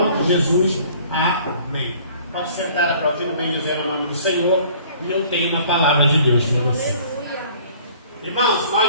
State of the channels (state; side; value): inverted; both; correlation -0.52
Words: de Jesus, amém. Pode sentar aplaudindo, bem dizendo o nome do Senhor, e eu tenho uma palavra de Deus para você. Irmãos,